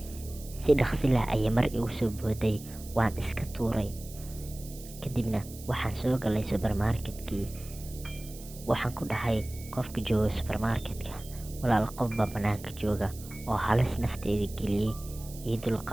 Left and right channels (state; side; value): noise; right; hiss, 17 dB below the sound